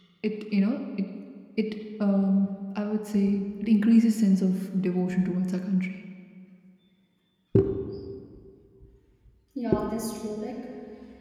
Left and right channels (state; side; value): identical; both; correlation 1.00